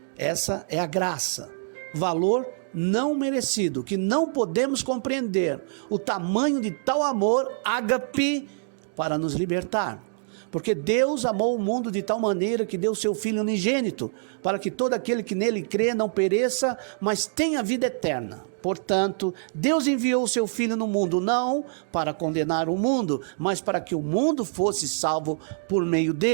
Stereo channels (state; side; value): silent; left; digital silence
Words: Essa é a graça, valor não merecido, que não podemos compreender o tamanho de tal amor, ágape, para nos libertar. Porque Deus amou o mundo de tal maneira que deu seu Filho unigênito, para que todo aquele que nele crê não pereça, mas tenha vida eterna. Portanto, Deus enviou o seu Filho no mundo, não para condenar o mundo, mas para que o mundo fosse salvo por meio